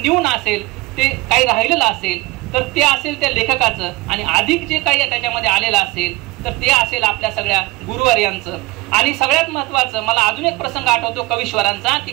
असेल ते काही राहिलेलं असेल तर ते असेल त्या लेखकाचं, आणि अधिक जे काही त्याच्यामध्ये आलेलं असेल तर ते असेल आपल्या सगळ्या गुरुवर्यांचं. आणि सगळ्यात महत्त्वाचं मला अजून एक प्रसंग आठवतो कवीश्वरांचा, की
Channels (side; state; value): left; quieter; 21.0 dB